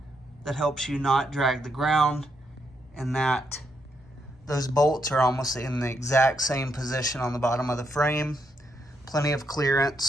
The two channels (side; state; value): both; normal; correlation 0.78